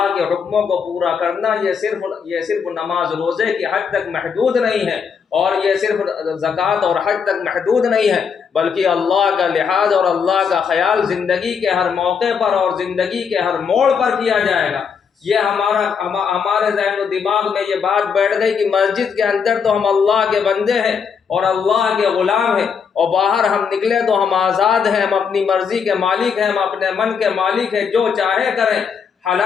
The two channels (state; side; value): quieter; right; 6.4 dB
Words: کے حکموں کو پورا کرنا یہ صرف نماز روزے کی حد تک محدود نہیں ہے، اور یہ صرف زکوٰۃ اور حج تک محدود نہیں ہے، بلکہ اللہ کا لحاظ اور اللہ کا خیال زندگی کے ہر موقع پر اور زندگی کے ہر موڑ پر کیا جائے گا۔ یہ ہمارے ذہن و دماغ میں یہ بات بیٹھ گئی کہ مسجد کے اندر تو ہم اللہ کے بندے ہیں اور اللہ کے غلام ہیں، اور باہر ہم نکلے تو ہم آزاد ہیں، ہم اپنی مرضی کے مالک ہیں، ہم اپنے من کے مالک ہیں، جو چاہے کریں،